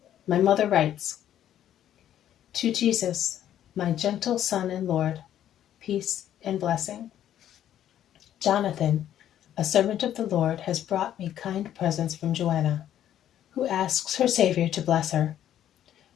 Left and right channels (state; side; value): quieter; right; 11.1 dB